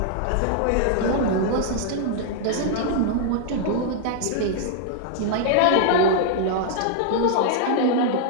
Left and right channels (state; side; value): different; both; correlation -0.01